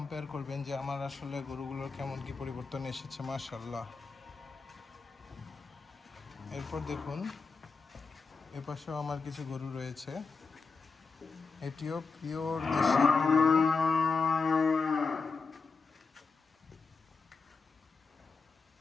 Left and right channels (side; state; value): right; quieter; 4.6 dB